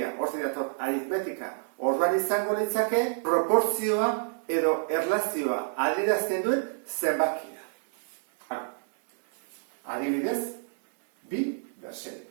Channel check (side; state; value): left; silent; digital silence